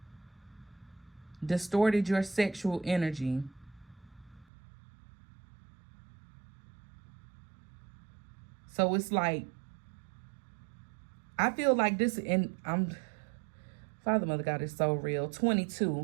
Distorted your sexual energy. So it's like, I feel like this, and Father, Mother, God is so real.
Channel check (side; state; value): left; drops out; at 4.5 s